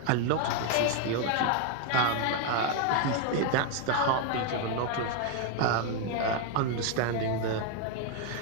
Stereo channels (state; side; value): different; both; correlation 0.01